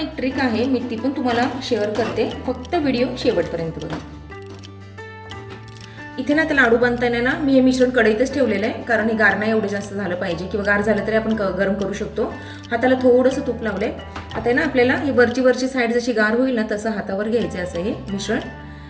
ट्रिक आहे, मी ती पण तुम्हाला शेअर करते, फक्त व्हिडिओ शेवटपर्यंत बघा. इथे ना आता लाडू बांधताना ना मी हे मिश्रण कढईतच ठेवलेलं आहे, कारण हे गार नाही एवढं जास्त झालं पाहिजे, किंवा गार झालं तरी आपण गरम करू शकतो. हाताला थोडंसं तूप लावलंय. आता ना आपल्याला ही वरची साईड जशी गार होईल ना तसं हातावर घ्यायचं असं हे मिश्रण,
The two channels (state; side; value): identical; both; correlation 1.00